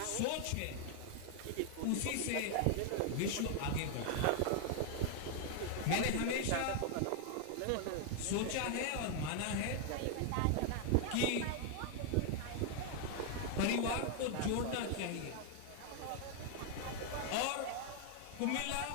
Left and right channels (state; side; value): different; both; correlation 0.00